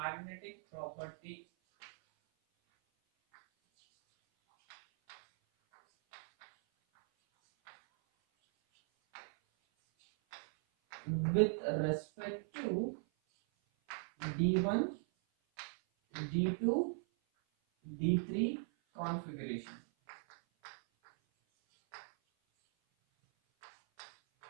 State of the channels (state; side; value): silent; left; 52 dB below the other